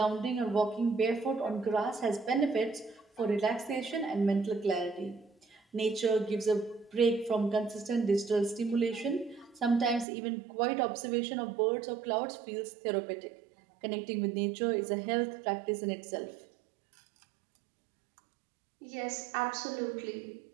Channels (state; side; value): drops out; left; at 10.1 s